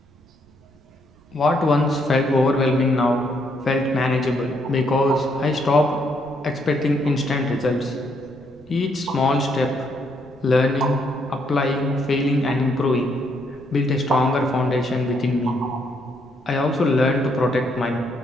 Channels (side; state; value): right; noise; rumble, 29 dB below the sound